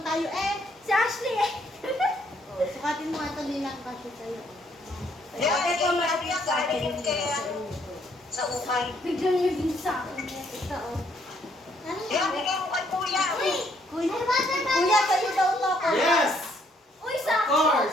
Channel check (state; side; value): normal; both; correlation 0.69